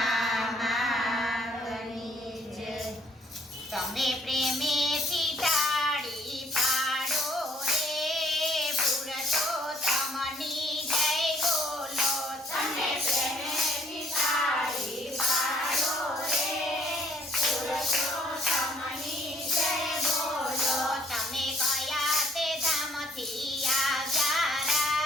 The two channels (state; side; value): normal; both; correlation 0.62